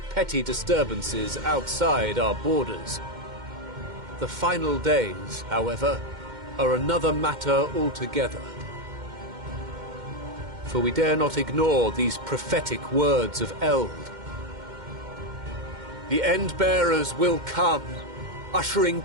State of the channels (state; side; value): late; left; 2.1 ms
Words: disturbances outside our borders. The final days, however, are another matter altogether. For we dare not ignore these prophetic words of Eld. The Endbearers will come, ushering